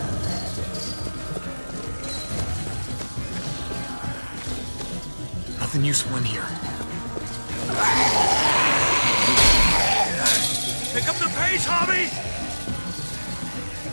Nothing useful in here. Pick up the pace, Hobby!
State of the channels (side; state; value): both; inverted; correlation -1.00